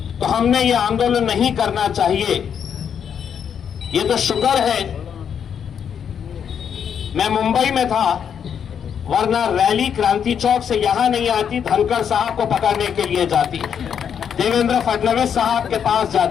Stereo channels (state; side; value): quieter; right; 7.9 dB